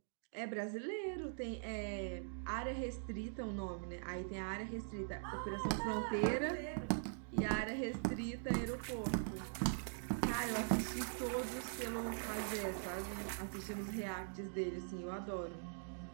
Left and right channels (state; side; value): silent; left; digital silence